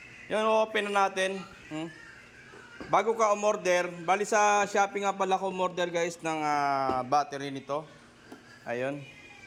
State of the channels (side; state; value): both; identical; correlation 1.00